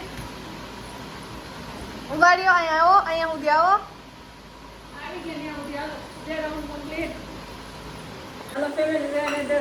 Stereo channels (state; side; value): identical; both; correlation 1.00